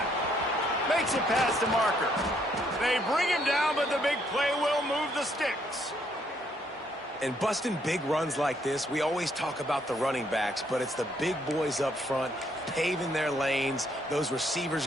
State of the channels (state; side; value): normal; both; correlation 0.70